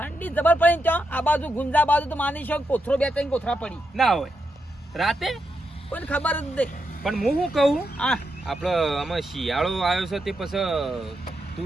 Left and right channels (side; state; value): both; normal; correlation 0.84